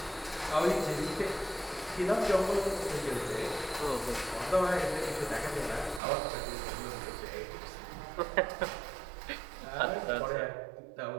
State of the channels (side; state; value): left; drops out; at 6.0 s